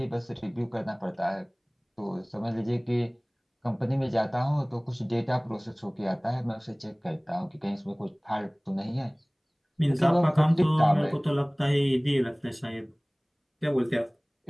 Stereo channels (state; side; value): identical; both; correlation 1.00